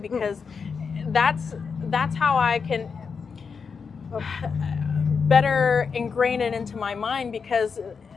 that's how I can better ingrain it into my mind, because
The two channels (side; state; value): right; quieter; 5.6 dB